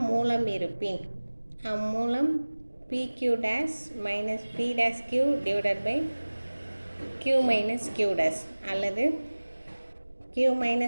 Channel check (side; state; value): both; inverted; correlation -1.00